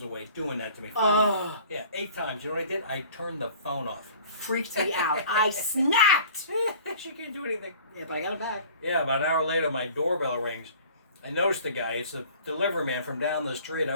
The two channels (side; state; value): both; inverted; correlation -0.48